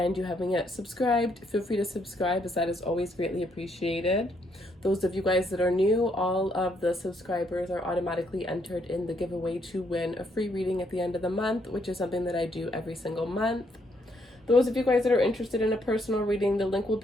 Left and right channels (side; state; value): both; normal; correlation 0.72